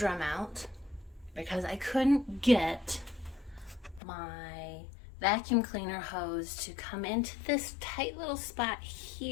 out because I couldn't get my vacuum cleaner hose to come into this tight little spot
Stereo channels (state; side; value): drops out; right; at 4.0 s